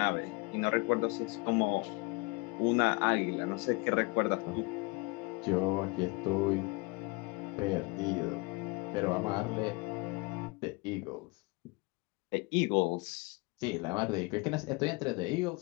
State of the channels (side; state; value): right; quieter; 27.1 dB